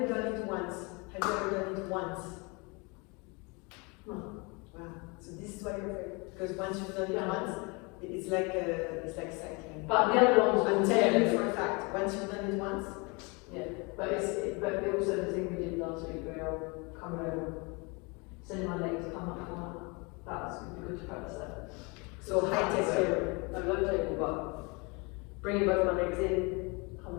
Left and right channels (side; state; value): right; quieter; 29.3 dB